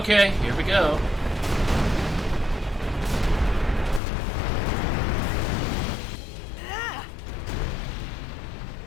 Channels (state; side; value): drops out; right; at 4.0 s